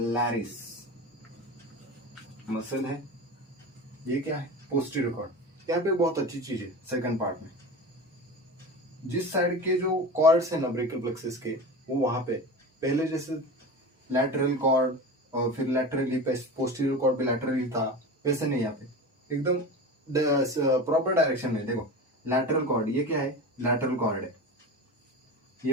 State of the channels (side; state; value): both; normal; correlation 0.29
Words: मसल है। ये क्या है, पोस्टीरियर कॉर्ड। यहाँ पे बहुत अच्छी चीज है सेकंड पार्ट में, जिस साइड के जो कॉर्ड्स है ना ब्रेकियल प्लेक्सस के, वो वहां पे पहले जैसे लैटरल कॉर्ड और फिर लैटरली पोस्टीरियर कॉर्ड भी लैटरली था, वैसे नहीं। यहाँ पे एकदम प्रॉपर डायरेक्शन में। देखो लैटरल कॉर्ड, ये क्या है, लैटरल कॉर्ड है,